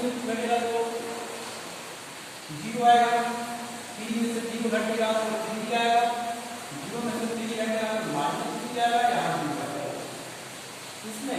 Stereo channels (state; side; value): identical; both; correlation 1.00